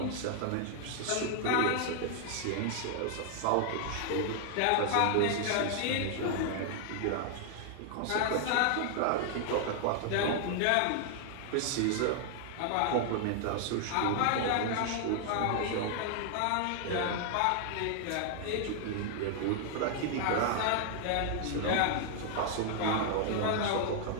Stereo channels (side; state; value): both; different; correlation 0.00